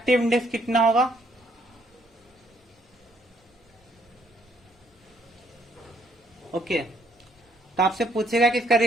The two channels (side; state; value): both; normal; correlation 0.68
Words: इंडेक्स कितना होगा। ओके, तो आपसे पूछेगा कि इसका